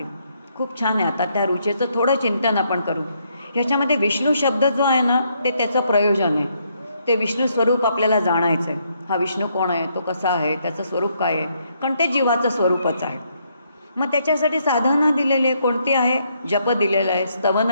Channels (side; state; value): both; inverted; correlation -0.73